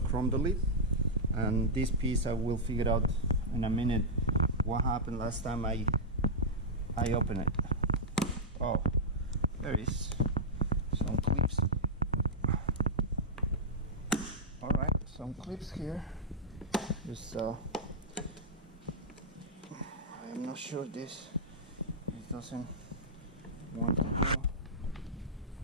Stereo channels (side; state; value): both; normal; correlation -0.06